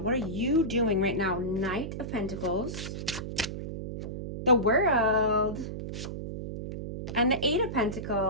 What are you doing right now? Knight of Pentacles, the World, and the Eight of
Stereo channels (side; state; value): right; noise; hum, 7 dB below the sound